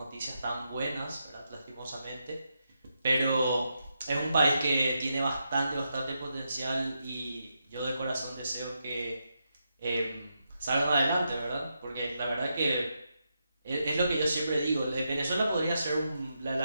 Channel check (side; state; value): both; inverted; correlation -0.84